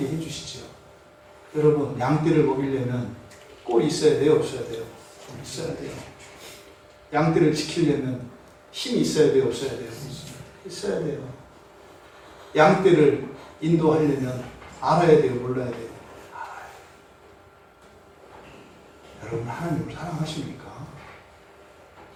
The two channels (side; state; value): both; identical; correlation 1.00